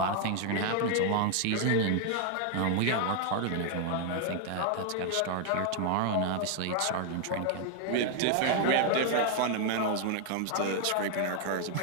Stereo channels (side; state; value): both; different; correlation 0.00